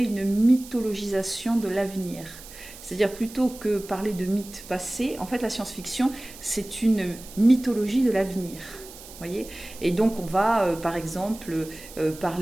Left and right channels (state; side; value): noise; right; hiss, 17 dB below the sound